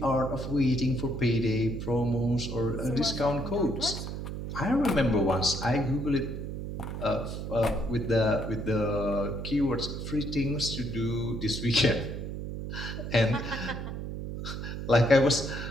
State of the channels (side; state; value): right; noise; hum, 6 dB below the sound